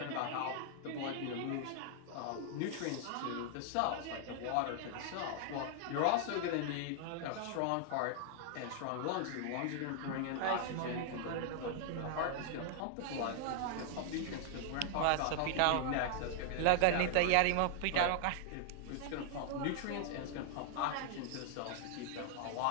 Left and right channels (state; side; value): different; both; correlation 0.00